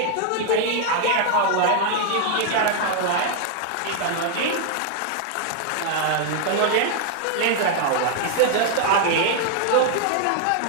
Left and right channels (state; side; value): different; both; correlation 0.00